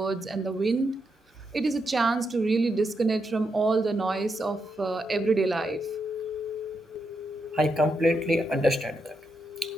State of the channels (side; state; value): both; normal; correlation 0.83